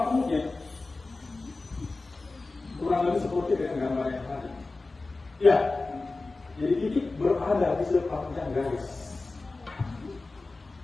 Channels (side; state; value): right; quieter; 3.4 dB